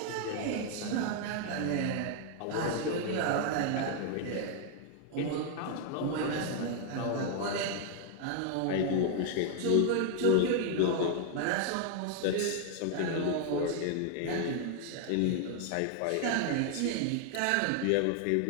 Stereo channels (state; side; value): different; both; correlation 0.00